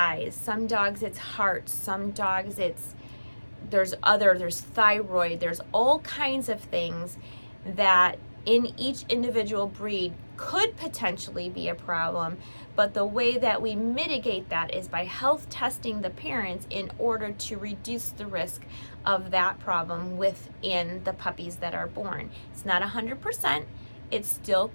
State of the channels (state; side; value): inverted; both; correlation -1.00